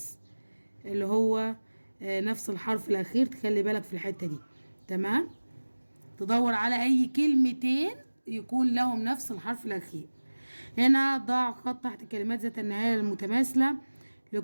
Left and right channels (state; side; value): inverted; both; correlation -1.00